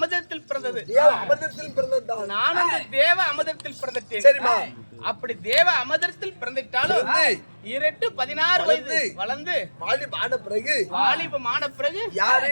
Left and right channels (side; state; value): both; inverted; correlation -1.00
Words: பிறந்தது. நானும் அந்த தேவ அமிர்தத்தில் பிறந்துட்டேன். அப்படி தேவ அமிர்தத்தில் பிறந்துட்டாலும் 16 வயது வளர்ந்து வாலிபமான பிறகு